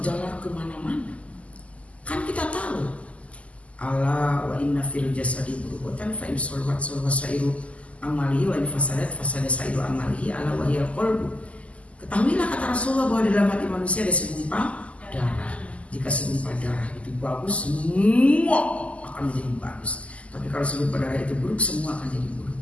kemana-mana. Kan kita tahu, ala wa inna fil jasadi mudghatan fa in salahat salaha sairu amalihi wa in fasadat fasada sairu amalihi ala wa hiyal qalbu. Ketahuilah kata Rasulullah bahwa di dalam hati manusia ada segumpal darah. Jika segumpal darah itu bagus, semua akan menjadi bagus. Tapi kalau segumpal darah itu buruk, semua akan jadi buruk.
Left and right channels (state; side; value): late; right; 0.064 ms